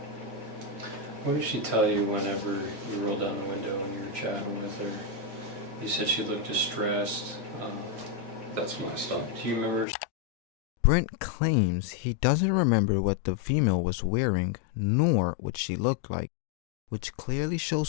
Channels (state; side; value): drops out; right; at 9.9 s